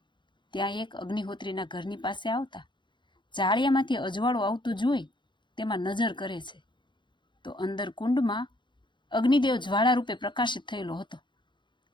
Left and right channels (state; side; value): late; right; 0.23 ms